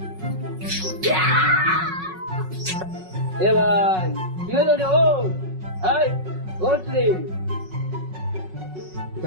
এ ভাই কি হলো রে? ও হাই ওঠ রে।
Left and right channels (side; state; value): left; late; 5.4 ms